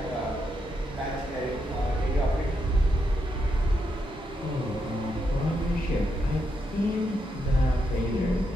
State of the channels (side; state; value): both; normal; correlation 0.81